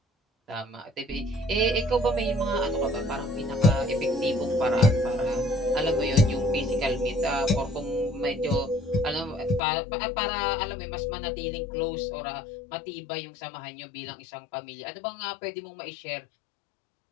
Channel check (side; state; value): right; drops out; at 9.6 s